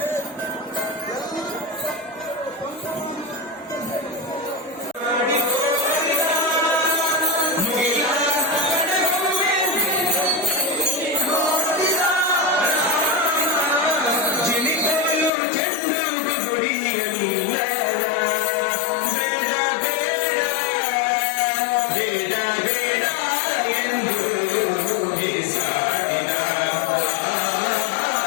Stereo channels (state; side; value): drops out; right; at 15.3 s